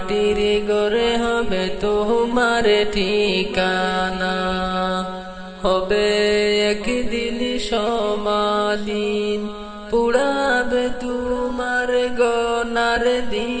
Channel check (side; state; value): both; identical; correlation 1.00